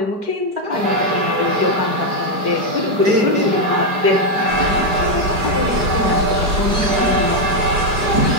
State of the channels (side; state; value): left; late; 4.9 ms